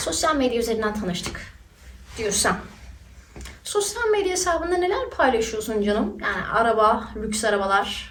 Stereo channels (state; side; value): identical; both; correlation 1.00